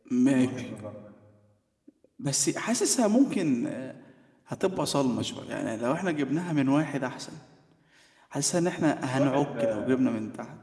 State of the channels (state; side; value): identical; both; correlation 1.00